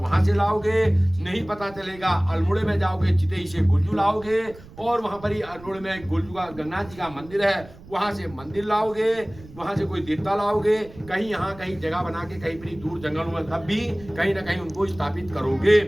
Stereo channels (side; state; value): right; noise; rumble, 20 dB below the sound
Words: से लाओगे, नहीं पता चलेगा अल्मोड़े में जाओगे, चितई से गुलजू लाओगे, और वहां पर ही अल्मोड़े में गुलजू का गंगनाथ जी का मंदिर है, वहां से मंदिर लाओगे, वहां से कोई देवता लाओगे, कहीं यहाँ कहीं जगह बना के कहीं पर दूर जंगलों में तब भी कहीं ना कहीं उनको स्थापित करोगे।